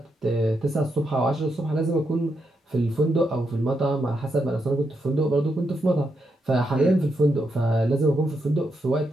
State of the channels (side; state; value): both; normal; correlation 0.82